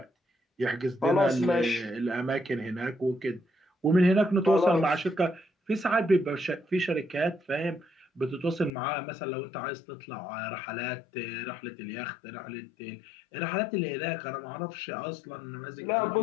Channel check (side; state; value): right; drops out; at 8.7 s